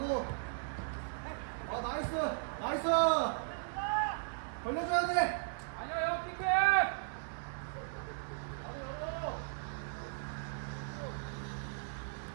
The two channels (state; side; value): silent; left; digital silence